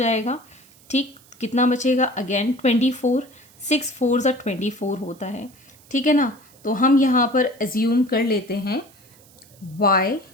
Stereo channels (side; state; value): right; noise; hiss, 27 dB below the sound